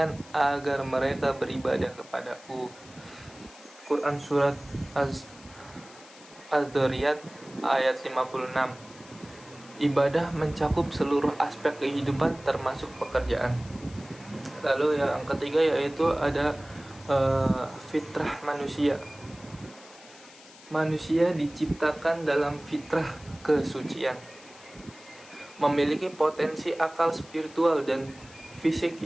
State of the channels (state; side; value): noise; left; hiss, 21 dB below the sound